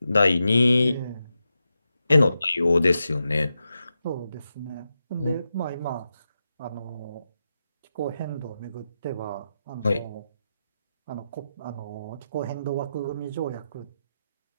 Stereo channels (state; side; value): inverted; both; correlation -0.88